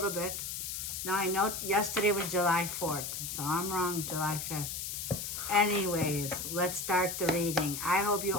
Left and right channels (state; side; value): noise; left; hiss, 5 dB below the sound